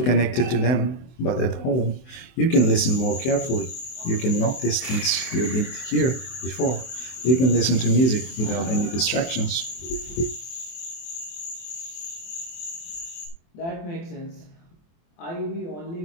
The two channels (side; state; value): right; late; 24 ms